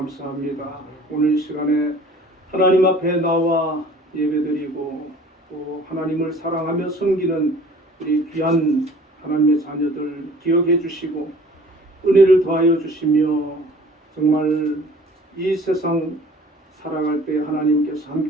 오늘 시간에 하나님 앞에 나와 예배드리고 또 하나님을 사랑하며 섬기는 우리 귀한 하나님의 자녀들 기억해 주시고 은혜를 더하여 주시며 정말 이 세상 살아갈 때 하나님께서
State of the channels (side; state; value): both; normal; correlation 0.49